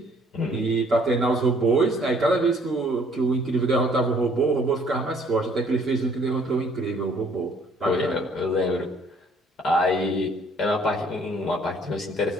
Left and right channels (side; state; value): both; normal; correlation 0.60